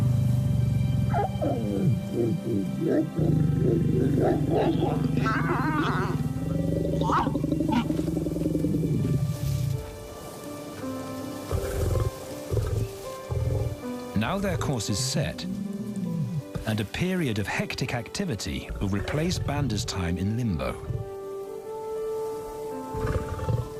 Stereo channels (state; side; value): identical; both; correlation 1.00